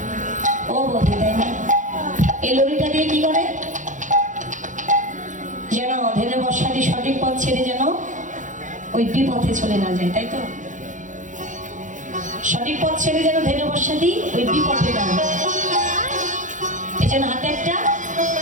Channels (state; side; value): late; left; 0.37 ms